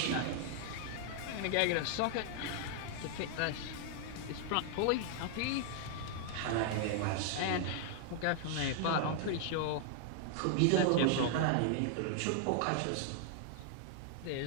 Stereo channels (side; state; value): both; different; correlation 0.00